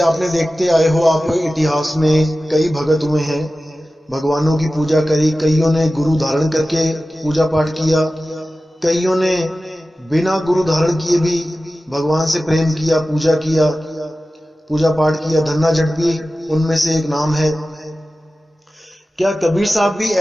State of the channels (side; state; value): both; normal; correlation 0.95